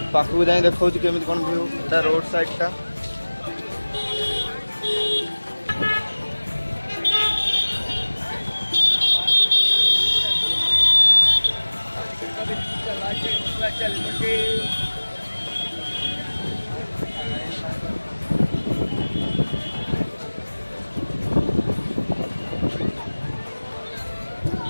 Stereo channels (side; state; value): both; inverted; correlation -1.00